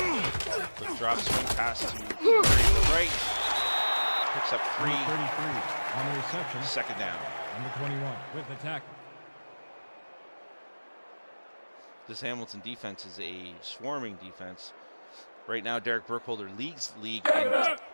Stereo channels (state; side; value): inverted; both; correlation -1.00